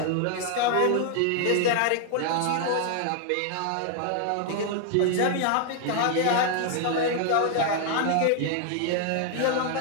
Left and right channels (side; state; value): both; different; correlation 0.00